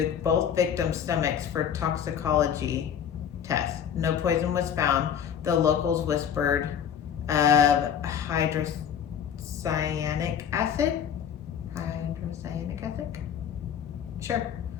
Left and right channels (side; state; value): right; quieter; 8.5 dB